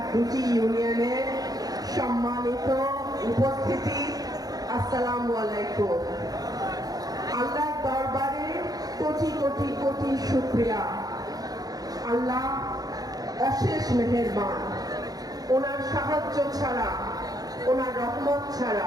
২টি ইউনিয়নের সম্মানিত উপস্থিতি, আসসালামু আলাইকুম। আল্লাহর দরবারে কোটি কোটি কোটি শুকরিয়া। আল্লাহ অশেষ মেহেরবান। ওনার সাহায্য ছাড়া, ওনার রহমত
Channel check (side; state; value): left; late; 0.18 ms